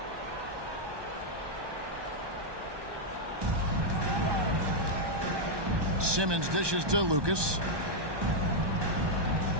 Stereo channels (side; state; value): left; late; 1.2 ms